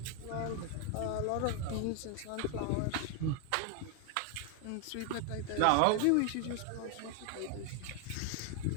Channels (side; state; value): both; different; correlation 0.00